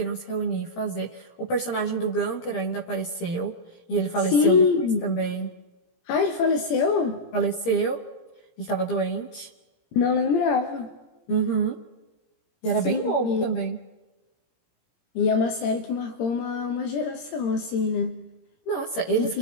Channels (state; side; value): late; right; 17 ms